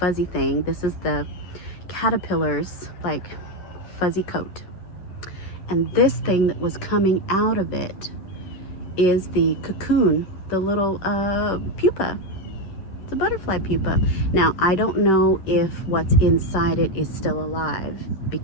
thing. This is the caterpillar's like fuzzy coat. And this thing that was coming out of it is the cocoon, the little pupa. It's a butterfly pupa. Now, I don't know if what's inside it is still alive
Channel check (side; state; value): right; late; 10 ms